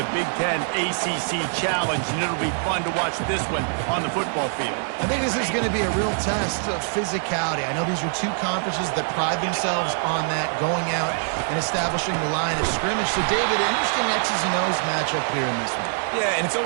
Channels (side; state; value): left; silent; 63 dB below the other